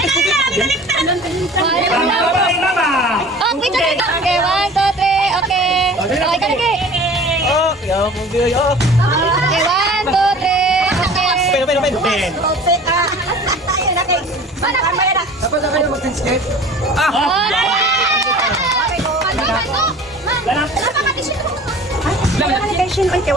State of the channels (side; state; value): both; normal; correlation 0.43